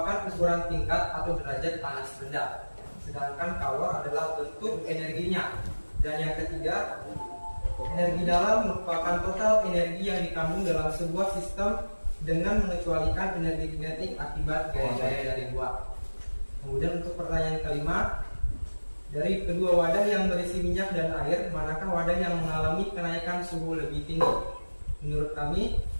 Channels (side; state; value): both; inverted; correlation -1.00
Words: ukuran tingkat atau derajat panas rendah, sedangkan kalor adalah bentuk energinya. Dan yang ketiga, energi dalam merupakan total energi yang dikandung dalam sebuah sistem dengan mengecualikan energi kinetik akibat gaya-gaya dari buah. Kemudian untuk pertanyaan kelima, dari kedua wadah yang berisi minyak dan air, manakah wadah yang mengalami kenaikan suhu lebih tinggi? Menurut kami,